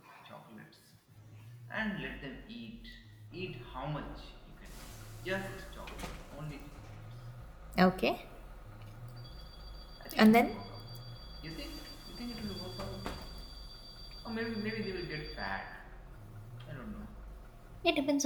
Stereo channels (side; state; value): both; identical; correlation 1.00